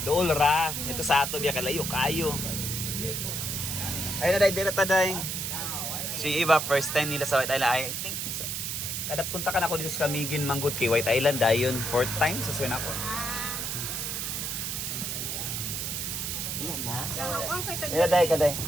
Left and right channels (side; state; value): right; noise; hiss, 3 dB below the sound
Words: dool ra. Ito sa ato biya kalayo kayo. Ay na dire ta day. Si iba first time nila sa White Island. I think kada punta ka na ako dito sa Camiguin manggod kay White Island dayon fourth time sa suwan ako. Ang kay tag. Ila day kaday.